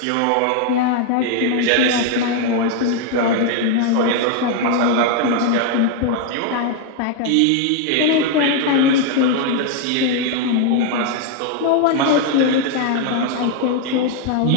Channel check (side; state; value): both; different; correlation 0.01